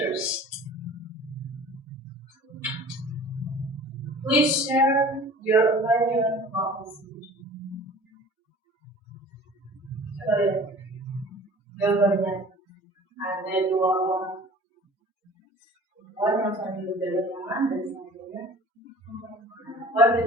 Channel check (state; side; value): normal; both; correlation 0.45